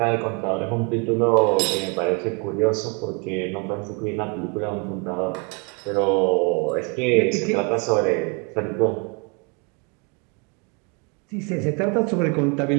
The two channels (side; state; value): left; quieter; 33.6 dB